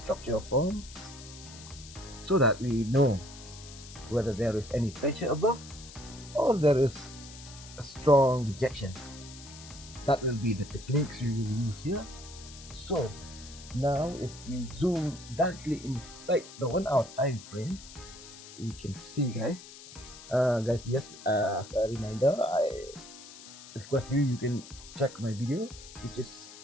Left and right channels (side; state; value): left; noise; hiss, 16 dB below the sound